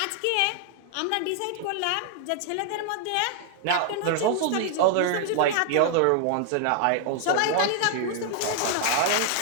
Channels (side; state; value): both; different; correlation 0.00